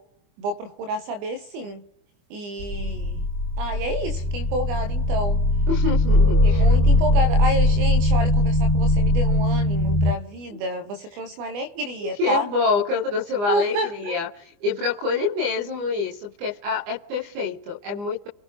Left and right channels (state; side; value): late; left; 25 ms